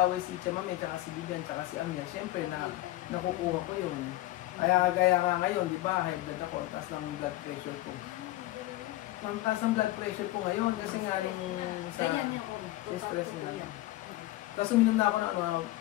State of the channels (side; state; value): right; quieter; 16.9 dB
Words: si Chamame, tsaka si Vivian, tsaka si Amya, syempre nakukuha ko yun. Kaya nga ngayon, di ba, high blood ako, taas ng blood pressure ko. Ang taas ng blood pressure ko ngayon kasi nga yung sa Ganyan yung oo. yung stress Total na. yan. Tapos uminom na ako ng